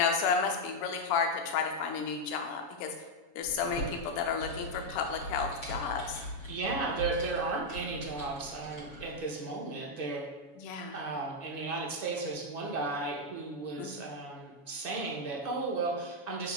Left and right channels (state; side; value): late; right; 7.1 ms